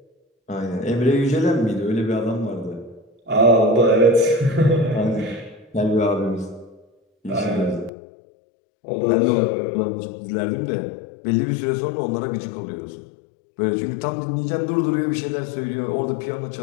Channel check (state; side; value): drops out; right; at 7.9 s